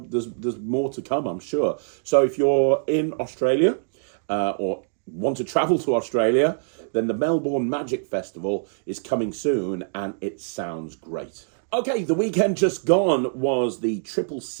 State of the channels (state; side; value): silent; left; digital silence